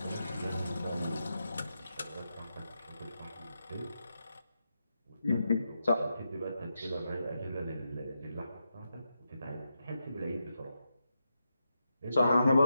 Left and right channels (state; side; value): inverted; both; correlation -0.86